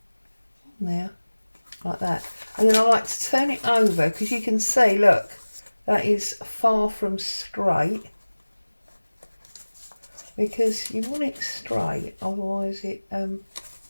on there like that. And then I like to turn it over, because you can see, look, that is far from straight, because you want it straight, otherwise it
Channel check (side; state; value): both; inverted; correlation -1.00